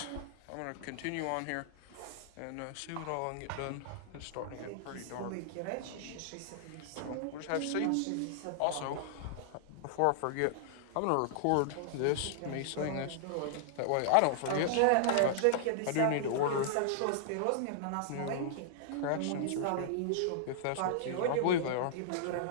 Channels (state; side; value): different; both; correlation -0.01